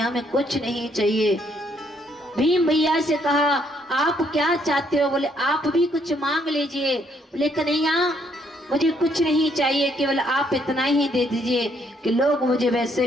में कुछ नहीं चाहिए। भीम भैया से कहा आप क्या चाहते हो। बोले आप भी कुछ मांग लीजिए। बोले कन्हैया मुझे कुछ नहीं चाहिए, केवल आप इतना ही दे दीजिए कि लोग मुझे वैसे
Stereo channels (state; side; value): normal; both; correlation 0.70